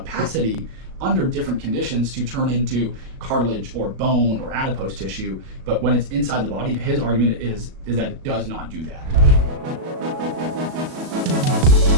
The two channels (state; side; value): late; left; 37 ms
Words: under different conditions to turn into cartilage or bone or adipose tissue, but when it's inside the body, his argument is that it does not do that.